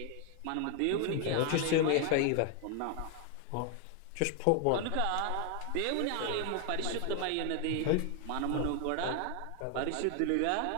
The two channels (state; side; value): different; both; correlation 0.00